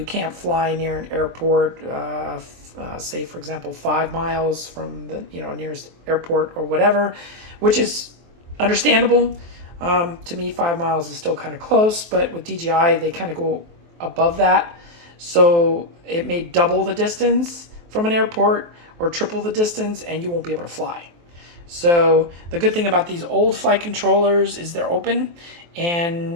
can't fly near an airport, say for example 5 miles from the nearest airport or whatever, which is understandable. To me, 5 miles is still kind of close, but with DJI, they kind of go above that. So it may double the distance from an airport or triple the distance, and you won't be able to fly. So the good thing about these old flight controllers is they're open,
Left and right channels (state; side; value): late; left; 23 ms